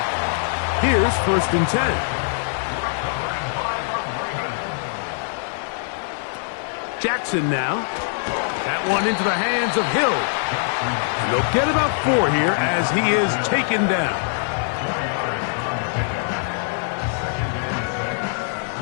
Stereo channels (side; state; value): right; silent; 64 dB below the other